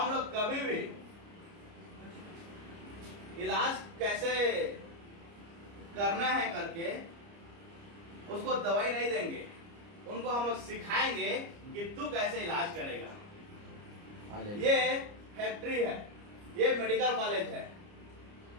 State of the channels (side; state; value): left; late; 29 ms